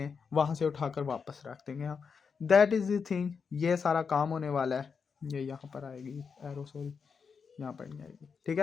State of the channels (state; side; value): quieter; right; 5.8 dB